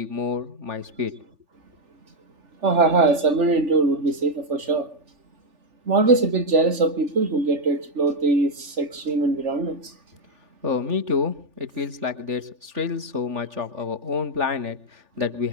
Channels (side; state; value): left; late; 3.4 ms